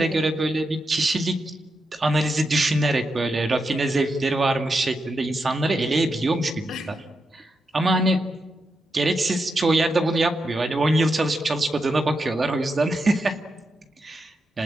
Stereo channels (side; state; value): both; normal; correlation 0.86